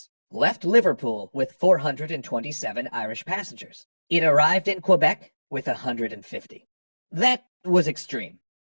left Liverpool with 427 Irish passengers. It arrived in Quebec with 150. That was extreme.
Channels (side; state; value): both; inverted; correlation -1.00